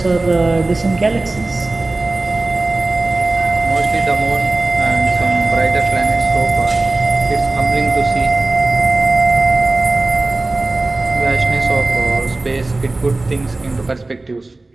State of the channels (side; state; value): left; quieter; 3.1 dB